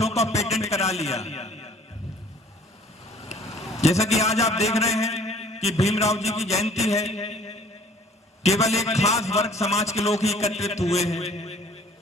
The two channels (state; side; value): normal; both; correlation 0.53